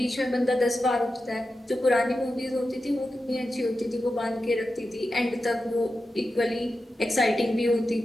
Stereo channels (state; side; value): normal; both; correlation 0.91